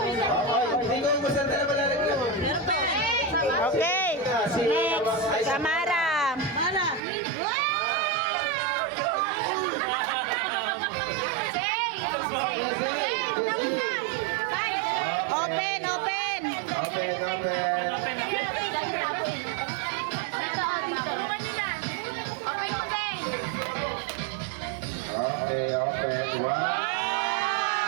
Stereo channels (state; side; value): drops out; left; at 7.0 s